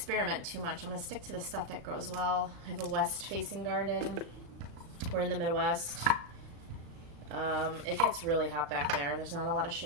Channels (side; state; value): left; late; 36 ms